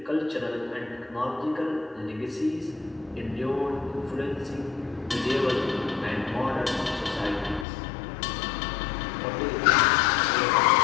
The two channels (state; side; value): drops out; right; at 7.7 s